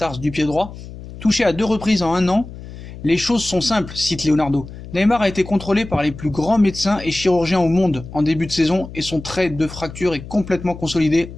du pied droit. Touché à 2 reprises en 1 an, les choses sont simples, cite Leonardo. Neymar a été contrôlé par les plus grands médecins et chirurgiens au monde en début de saison et son trait de fracture est complètement consolidé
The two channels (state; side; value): noise; left; hum, 14 dB below the sound